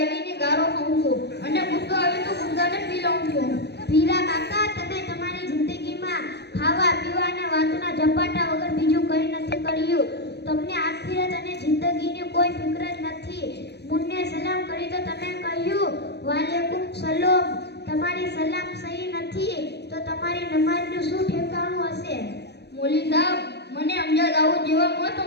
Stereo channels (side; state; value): right; late; 0.48 ms